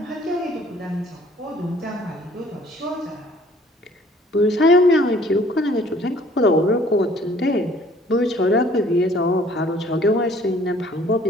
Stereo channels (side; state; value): both; normal; correlation 0.56